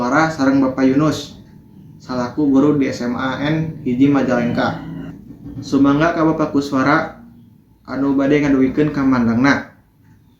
sareng Bapak Yunus salaku guru di SMA N hiji Majalengka. Sumangga ka Bapak Kuswara anu bade ngadugikeun kamandangna.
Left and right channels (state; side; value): identical; both; correlation 1.00